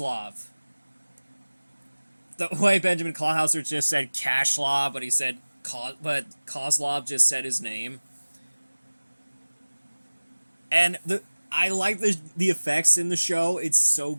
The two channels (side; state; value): both; inverted; correlation -1.00